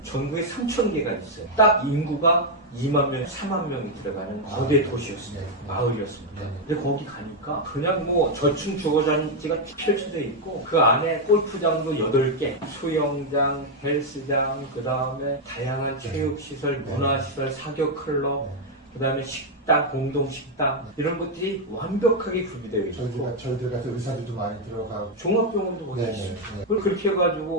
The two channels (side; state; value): both; normal; correlation 0.01